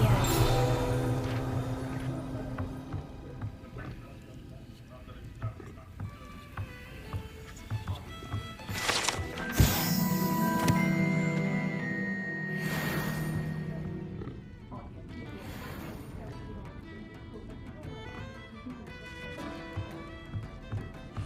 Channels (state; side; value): identical; both; correlation 1.00